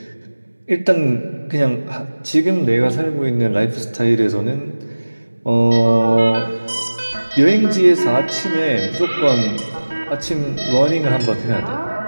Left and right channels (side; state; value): both; inverted; correlation -1.00